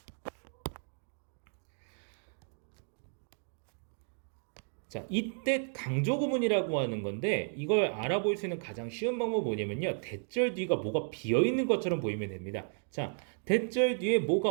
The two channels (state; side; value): silent; left; 55 dB below the other